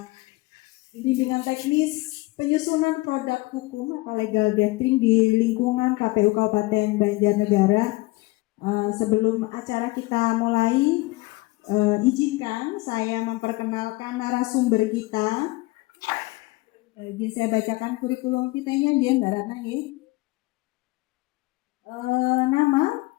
bimbingan teknis penyusunan produk hukum atau legal drafting di lingkungan KPU Kabupaten Banjarnegara. Sebelum acara kita mulai, izinkan saya memperkenalkan narasumber kita. Izin saya bacakan kurikulum kitanya dia Mbak Ratna ya. Nama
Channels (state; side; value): quieter; right; 22.0 dB